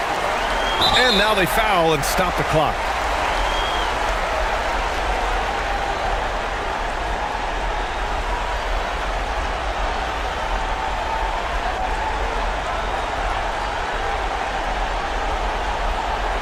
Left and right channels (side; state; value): both; identical; correlation 1.00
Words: And now they foul and stop the clock.